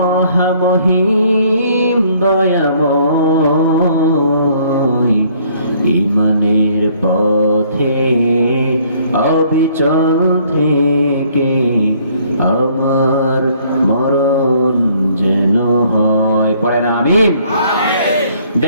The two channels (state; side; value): inverted; both; correlation -0.62